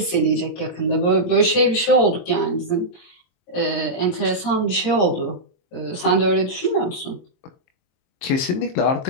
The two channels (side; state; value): right; late; 23 ms